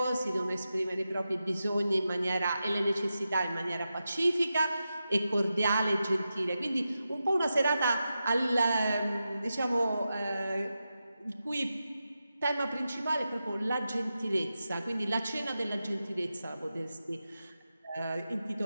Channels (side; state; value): both; inverted; correlation -0.90